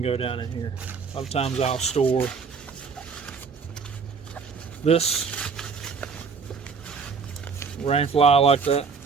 go down in here. A lot of times I'll store this rain fly like that,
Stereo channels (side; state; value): left; quieter; 5.4 dB